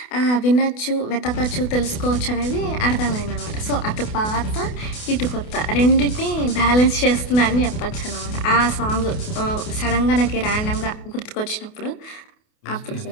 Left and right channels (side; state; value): right; late; 28 ms